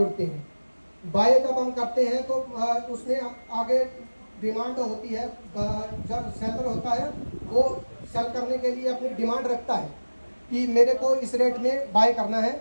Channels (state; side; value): inverted; both; correlation -1.00